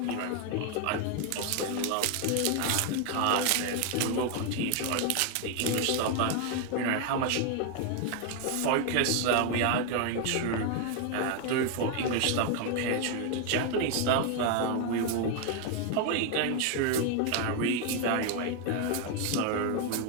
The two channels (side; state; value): both; different; correlation 0.01